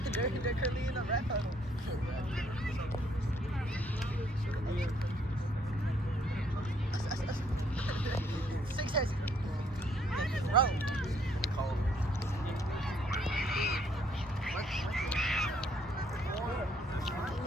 They're currently in the red huddle. Success. Bro.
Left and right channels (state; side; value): normal; both; correlation 0.67